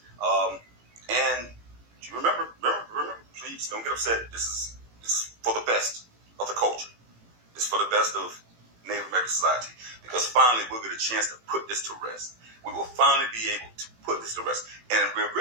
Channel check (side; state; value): left; late; 18 ms